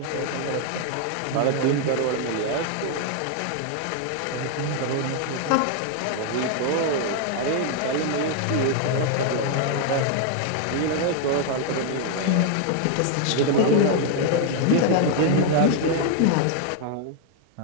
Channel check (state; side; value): different; both; correlation 0.00